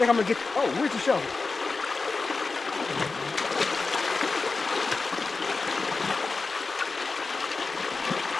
I'm gonna get, oh, where's the shovel?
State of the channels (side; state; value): right; quieter; 4.1 dB